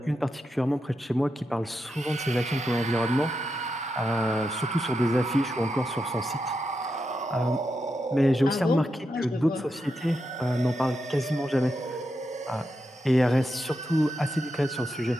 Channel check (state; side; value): normal; both; correlation 0.86